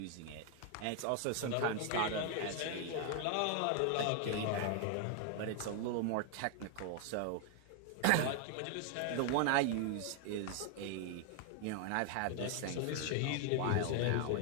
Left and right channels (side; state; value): both; different; correlation 0.00